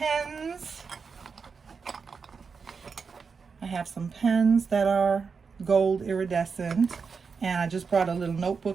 I have some pens that are gold iridescent, and I just brought a little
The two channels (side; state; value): left; quieter; 5.4 dB